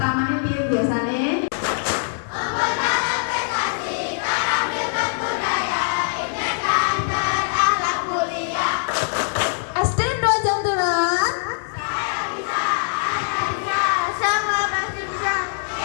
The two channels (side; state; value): right; silent; 64 dB below the other